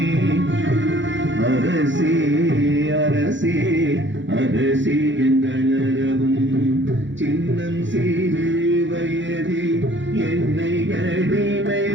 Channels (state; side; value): late; left; 0.54 ms